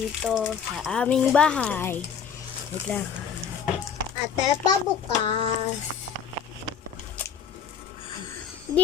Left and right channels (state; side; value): quieter; right; 7.3 dB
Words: sa aming bahay. Wait lang. At pa bukas. Hindi